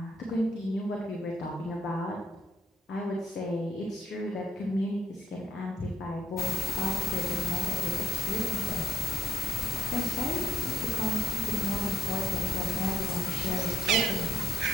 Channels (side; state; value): both; normal; correlation 0.75